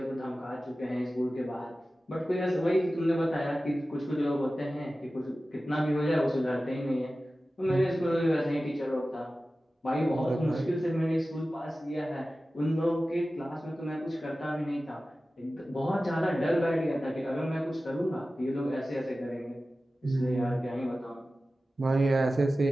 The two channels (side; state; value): both; normal; correlation 0.95